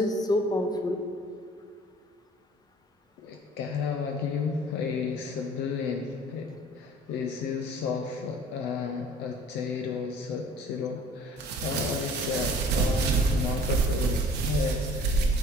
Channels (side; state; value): both; normal; correlation 0.50